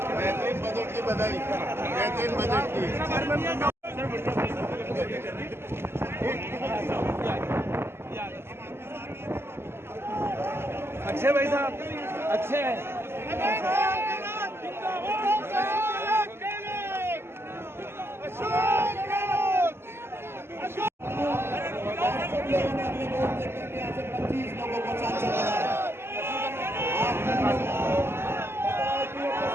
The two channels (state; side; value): late; left; 0.12 ms